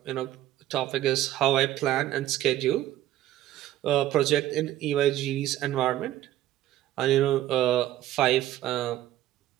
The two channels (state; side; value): quieter; left; 13.6 dB